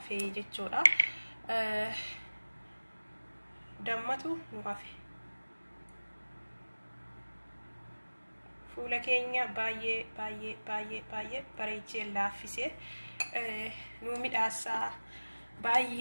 jechuudha. Dammatu nu hafee. Fuula keenya baay'ee bareechee laaffisee nu midhaasaa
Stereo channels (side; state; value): both; inverted; correlation -1.00